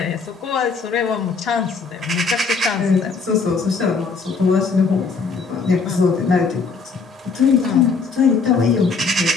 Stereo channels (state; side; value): quieter; right; 4.7 dB